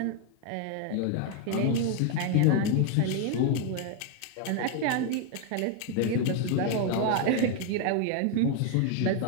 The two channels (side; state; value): both; different; correlation 0.00